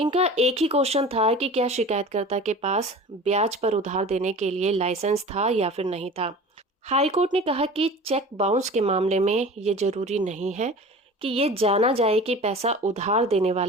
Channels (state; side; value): normal; both; correlation 0.39